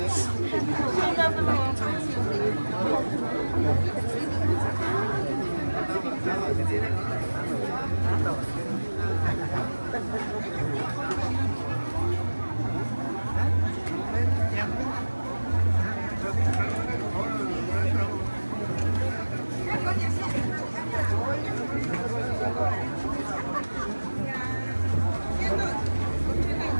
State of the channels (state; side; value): inverted; both; correlation -1.00